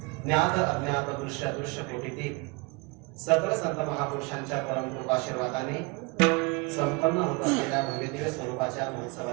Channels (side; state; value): left; quieter; 27.9 dB